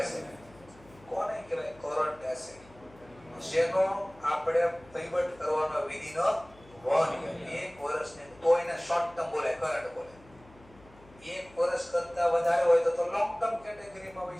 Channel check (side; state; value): left; noise; hum, 25 dB below the sound